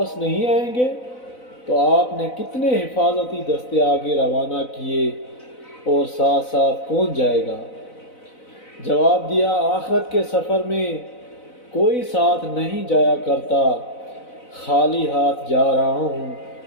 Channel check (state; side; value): late; right; 4.0 ms